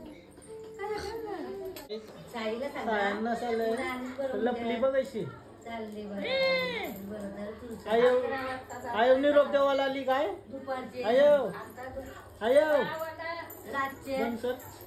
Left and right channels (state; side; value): identical; both; correlation 1.00